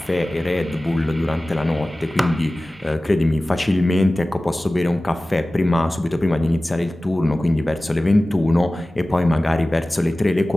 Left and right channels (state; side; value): normal; both; correlation 0.97